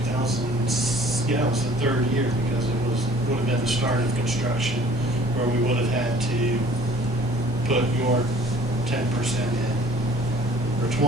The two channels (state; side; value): normal; both; correlation 0.52